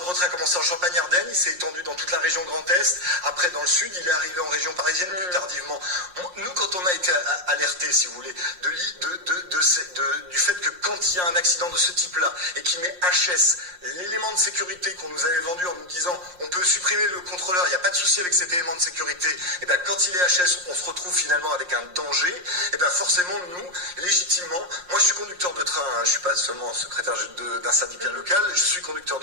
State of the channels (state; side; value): late; left; 5.6 ms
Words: retrait a commencé en Champagne-Ardenne, il s'est étendu dans toute la région Grand Est. Après, dans le sud, il est arrivé en région parisienne plus tardivement. Nous, quand on a été alertés, si vous voulez, du fait que quand il y a un accident de ce type-là et qui met HS, l'élément de sécurité qu'on nous avait vendu en nous disant on peut supprimer le contrôleur, il n'y a pas de souci avec cet élément de sécurité, et bien quand il est HS, on se retrouve finalement avec un danger, et bien forcément, nous, légitimement, moi je suis conducteur de train, hein, je suis pas seulement secrétaire d'un syndicat local, je suis conducteur